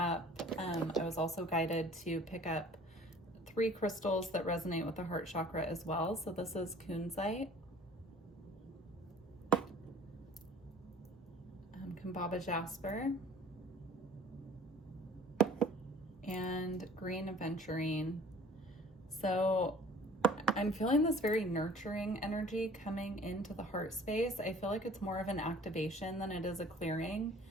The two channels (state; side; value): normal; both; correlation 0.50